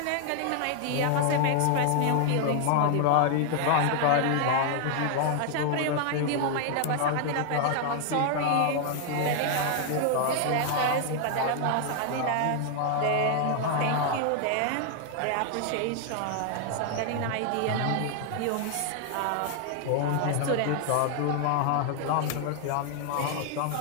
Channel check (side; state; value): both; different; correlation 0.00